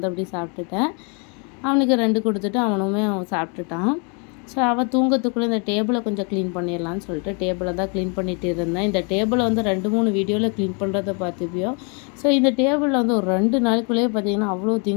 அப்படி சாப்பிட்டுட்டேன். அவனுக்கு 2 கொடுத்துட்டு அவனுமே அவன் சாப்பிட்டுட்டான். ஸோ அவள் தூங்கத்துக்குள்ளே இந்த டேபிளை கொஞ்சம் க்ளீன் பண்ணிடலான்னு சொல்லிட்டு டேபிளை தான் க்ளீன் பண்ணிகிட்டு இருந்தேன். இந்த டேபிளை வந்து 2-3 வீடியோவில் க்ளீன் பண்ணுறதை பார்த்துப்பியோ. ஸோ இந்த டேபிளில் வந்து ஒரு 2 நாளுக்குள்ளேயே பார்த்திங்கன்னா அவ்வளோ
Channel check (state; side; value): quieter; right; 35.9 dB